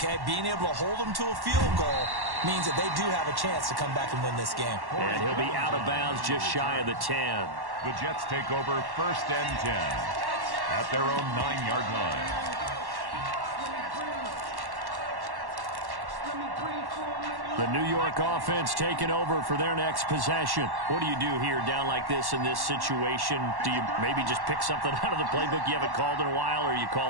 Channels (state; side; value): late; left; 1.1 ms